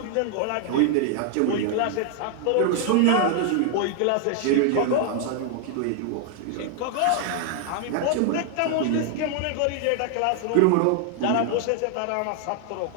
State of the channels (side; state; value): both; different; correlation 0.00